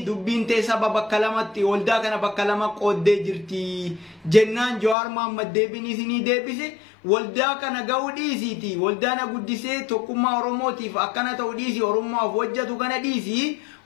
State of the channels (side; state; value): right; drops out; at 5.0 s